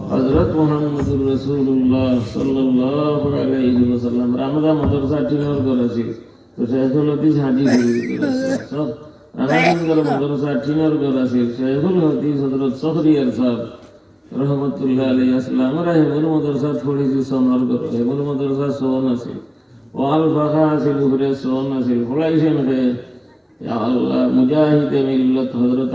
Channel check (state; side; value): identical; both; correlation 1.00